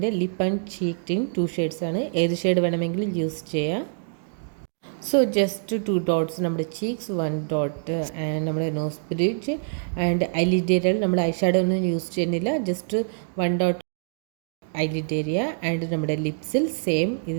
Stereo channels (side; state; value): left; silent; digital silence